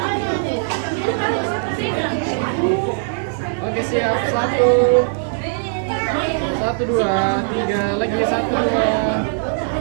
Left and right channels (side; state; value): left; silent; digital silence